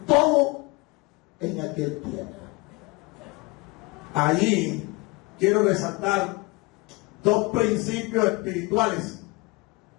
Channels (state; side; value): quieter; right; 24.5 dB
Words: todo en aquel tiempo. Allí quiero resaltar dos principios espirituales